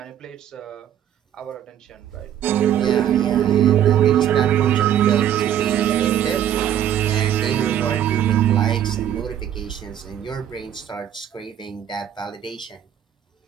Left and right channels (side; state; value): left; quieter; 10.5 dB